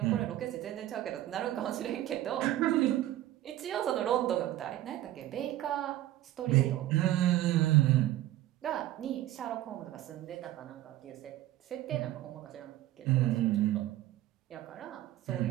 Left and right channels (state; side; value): quieter; left; 14.3 dB